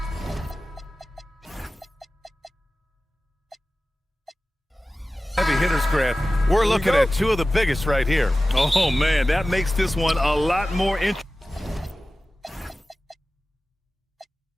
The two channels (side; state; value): both; normal; correlation 0.96